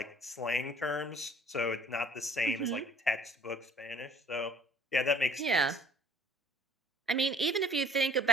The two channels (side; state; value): both; normal; correlation 0.55